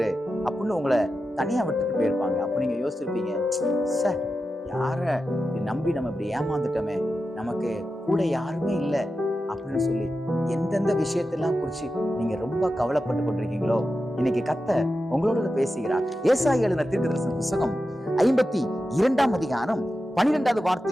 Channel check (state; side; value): normal; both; correlation 0.91